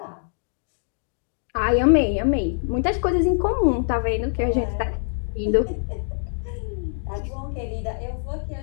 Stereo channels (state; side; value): silent; right; digital silence